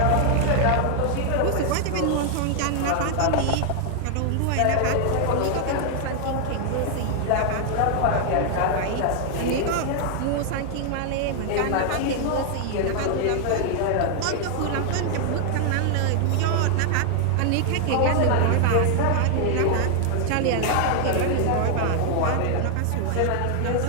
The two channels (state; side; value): different; both; correlation 0.00